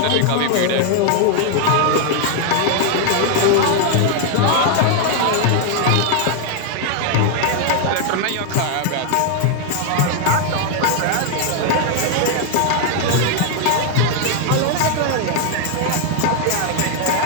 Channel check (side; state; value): both; different; correlation 0.00